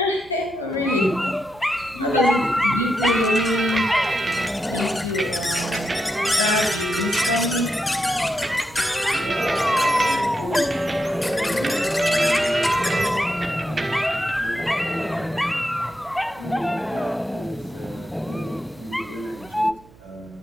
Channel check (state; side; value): noise; right; hum, 25 dB below the sound